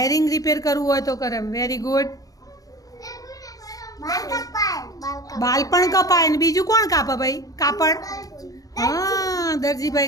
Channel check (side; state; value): right; late; 0.17 ms